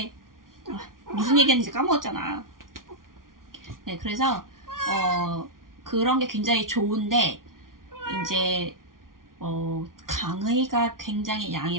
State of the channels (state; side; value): late; left; 0.90 ms